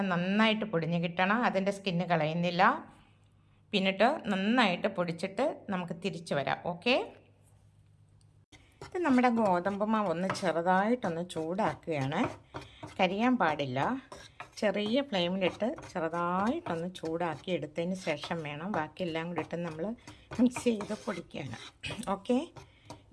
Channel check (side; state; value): both; identical; correlation 1.00